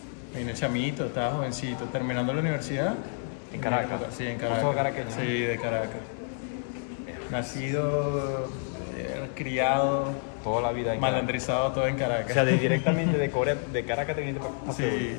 Vine chamito, estaba jovencito, terminando la universidad. ¿En Caracas? Sí, en Caracas. ¿Sos caraqueño? Sí, de Caracas. Nacido, criado, Toda la vida en malandrizado todo en Caracas. O sea, directamente de Corea, de Caracas te viniste para Sí,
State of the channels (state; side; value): silent; right; 58 dB below the other